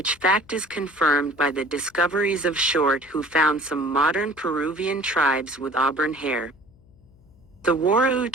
fact is confirmed by the discoveries of Short, who found some modern Peruvian tribes with auburn hair. The Warao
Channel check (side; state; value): left; noise; hum, 28 dB below the sound